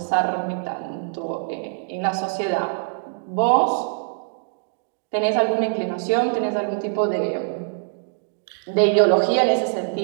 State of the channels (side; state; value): left; silent; 63 dB below the other